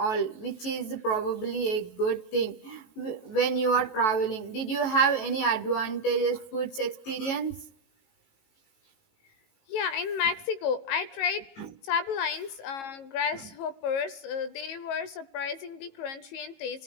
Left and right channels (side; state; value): right; late; 18 ms